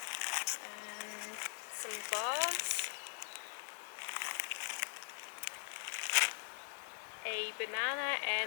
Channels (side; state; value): right; silent; 50 dB below the other